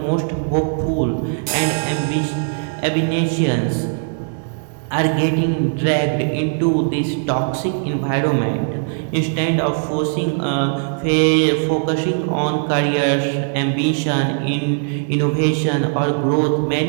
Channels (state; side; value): silent; left; digital silence